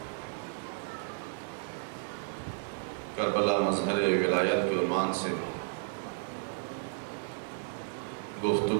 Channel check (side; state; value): left; silent; digital silence